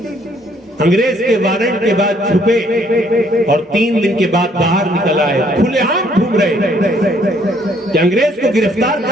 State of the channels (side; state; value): both; normal; correlation 0.65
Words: انگریز کے وارنٹ کے بعد چھپے اور 3 دن کے بعد باہر نکل آئے، کھلے عام گھوم رہے کہ انگریز کو گرفتار